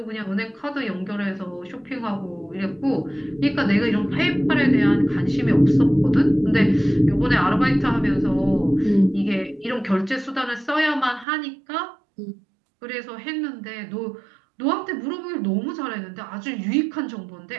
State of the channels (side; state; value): left; drops out; at 11.2 s